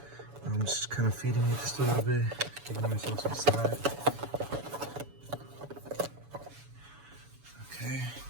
I'm just kind of feeding it just a little bit, giving myself some slack. Okay.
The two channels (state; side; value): late; left; 7.0 ms